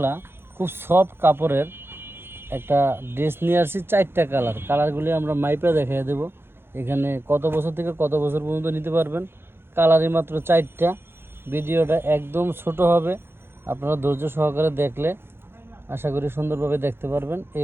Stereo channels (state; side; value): late; left; 0.11 ms